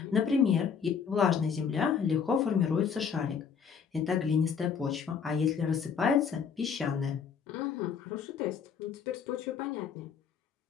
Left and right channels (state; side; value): quieter; right; 6.7 dB